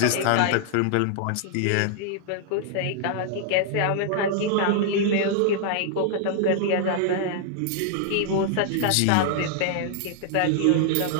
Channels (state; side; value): different; both; correlation -0.01